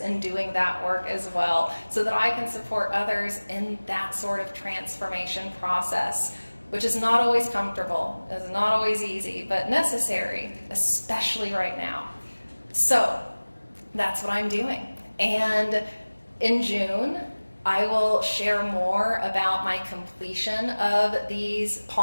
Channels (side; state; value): both; inverted; correlation -1.00